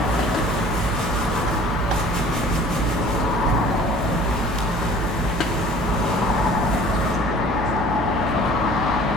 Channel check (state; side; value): noise; right; hum, 6 dB below the sound